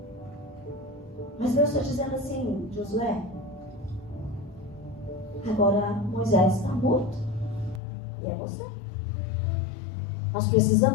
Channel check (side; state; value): right; drops out; at 7.8 s